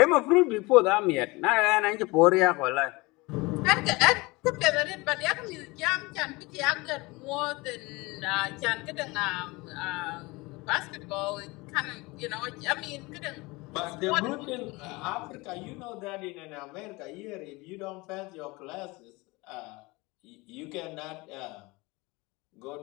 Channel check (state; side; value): quieter; right; 23.9 dB